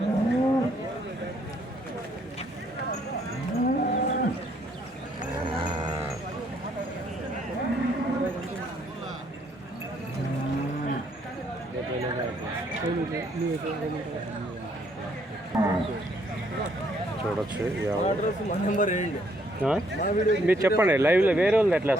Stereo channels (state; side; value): normal; both; correlation 0.68